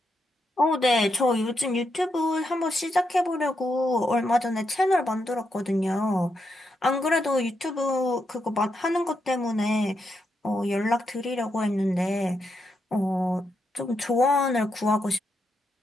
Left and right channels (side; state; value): both; normal; correlation 0.82